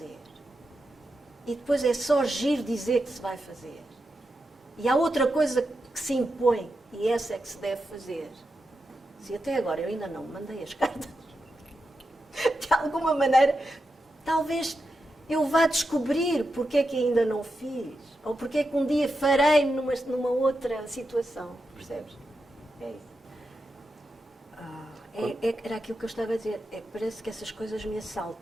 E depois é só giro dizer que se vai fazer. E há outra coisa que se impõe, e essa é que se deve fazer. Se até agora eu ainda não mandei as cartas, de alguma maneira, talvez eu vá descobrir porque é que ainda não fiz, ou porque é que um dia farei numa outra situação, percebes? É isso. Era aquilo que eu estava a dizer, parece que essas coisas me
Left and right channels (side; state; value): both; normal; correlation 0.88